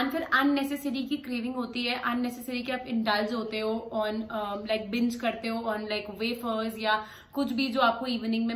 फिर अननेसेसरी की क्रेविंग होती है, अननेसेसरी के आप इंडल्ज होते हो ऑन लाइक बिंज करते हो ऑन लाइक वेफर्स या कुछ भी जो आपको इवनिंग में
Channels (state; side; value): identical; both; correlation 1.00